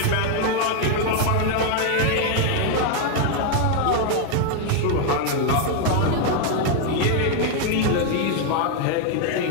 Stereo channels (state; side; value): different; both; correlation 0.00